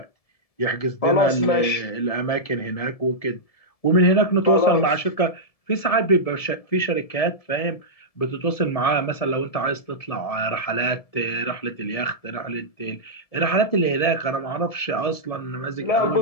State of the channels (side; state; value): right; late; 1.7 ms